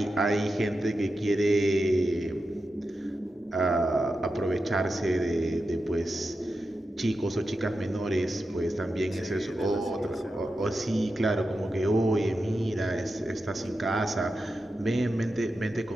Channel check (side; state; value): both; normal; correlation 0.90